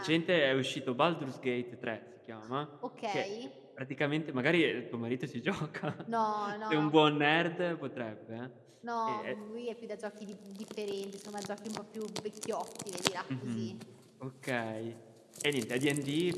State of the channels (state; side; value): identical; both; correlation 1.00